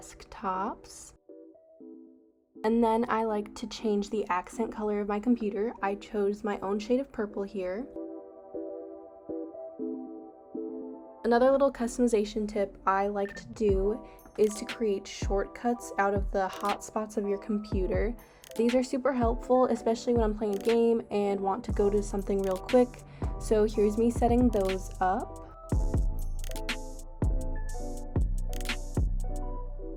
And then I like to change the accent color of my computer. I chose my own shade of purple here. Another little customization tip I like to do is to create shortcuts out of the hotspots of your computer. These are super helpful, especially when I'm playing a game and want to go to something real quick. So here's me setting those up.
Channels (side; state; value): both; identical; correlation 1.00